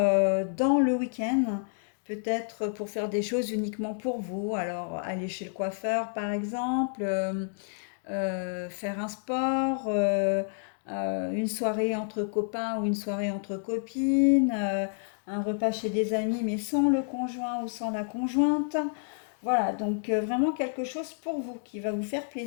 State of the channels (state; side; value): silent; right; digital silence